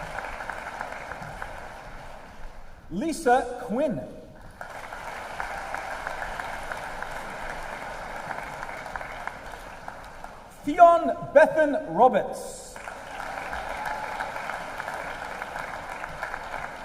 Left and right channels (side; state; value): both; identical; correlation 1.00